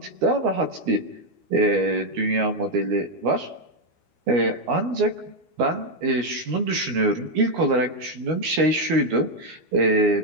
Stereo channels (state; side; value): late; left; 12 ms